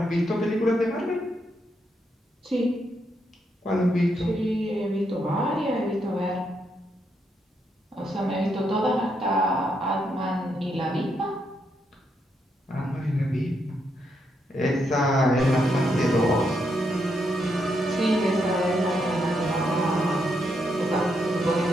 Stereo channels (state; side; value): normal; both; correlation 0.79